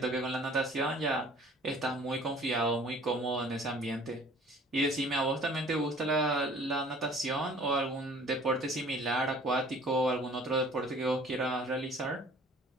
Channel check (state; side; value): normal; both; correlation 0.51